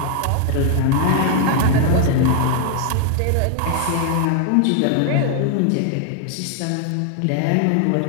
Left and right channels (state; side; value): different; both; correlation 0.01